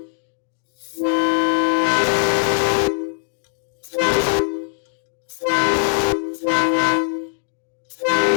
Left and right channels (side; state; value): right; silent; digital silence